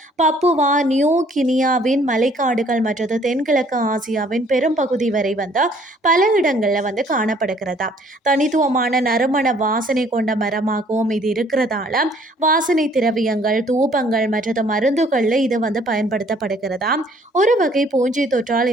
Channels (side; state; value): both; normal; correlation 0.60